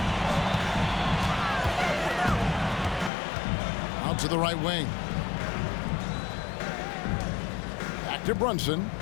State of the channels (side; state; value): right; drops out; at 3.1 s